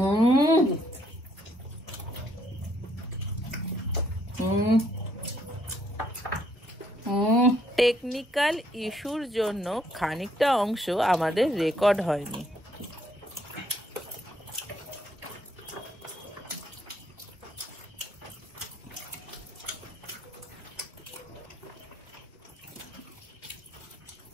টেকনিক্যাল ইস্যুর জন্য খানিকটা অংশ আমাদের রেকর্ড হয়নি।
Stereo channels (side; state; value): both; normal; correlation 0.69